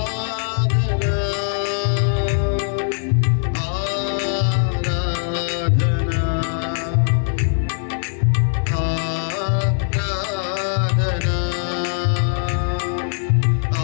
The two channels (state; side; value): silent; right; 61 dB below the other